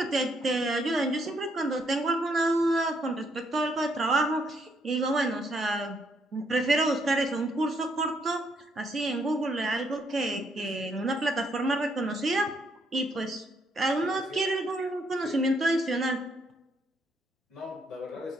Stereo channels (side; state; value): both; normal; correlation 0.73